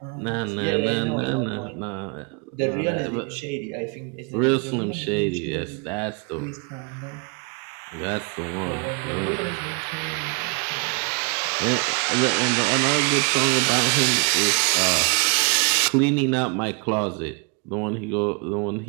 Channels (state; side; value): quieter; left; 35.3 dB